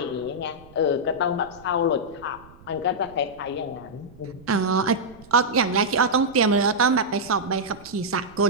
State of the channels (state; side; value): noise; right; rumble, 23 dB below the sound